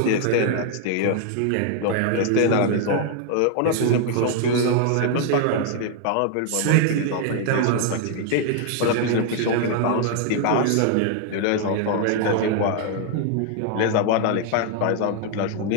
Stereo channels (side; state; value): both; different; correlation 0.00